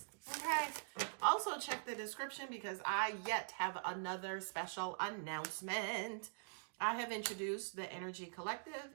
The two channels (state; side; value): silent; left; digital silence